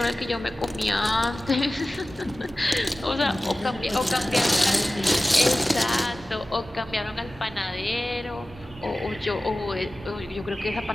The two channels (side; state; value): both; normal; correlation 0.96